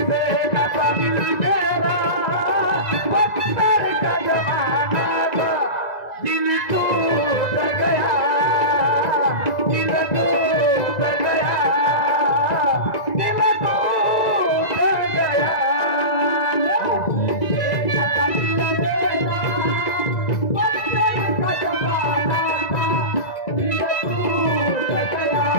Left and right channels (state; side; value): late; right; 2.0 ms